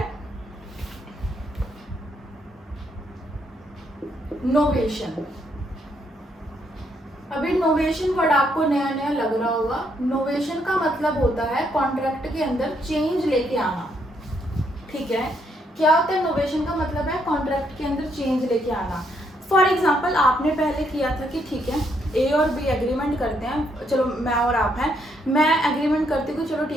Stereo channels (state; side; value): normal; both; correlation 0.74